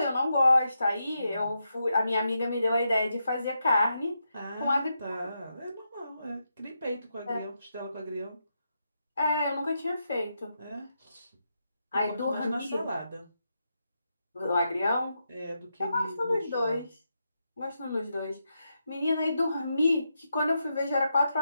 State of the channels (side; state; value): both; inverted; correlation -0.84